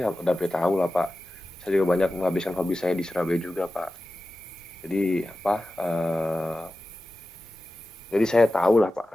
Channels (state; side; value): normal; both; correlation 0.94